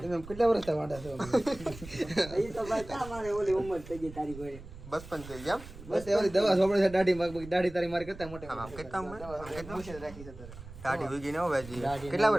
તમે કેટલા વર્ષ વાંઢા છો એ તો ભાઈ ક્યાં મારે ઓલી ઉંમર થઈ ગઈ તારી કોઈ. બસ પણ થઈ ગયા. બસ એવી દવા સોપડે છે દાઢી દાઢી તારી મારી કરતા મોટે આમ કેટલા ઉંમર? મુશ્કેલ રાખી છે તારે દાઢી ઉગી ને હો ભાઈ. કેટલા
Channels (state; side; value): noise; right; rumble, 15 dB below the sound